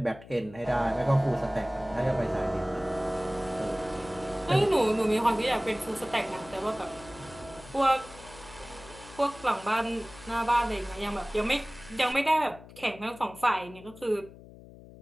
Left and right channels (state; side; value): noise; left; hum, 19 dB below the sound